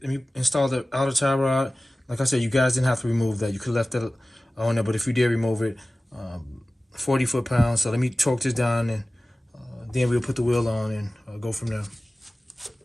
Let me install the outer tie rod. Like I said, you guys didn't have to remove that. You could have left that on there, but if you did remove it, 40 foot-pounds. So let me torque this down, and then we'll put the wheel on and go from there.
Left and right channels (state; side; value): normal; both; correlation 0.97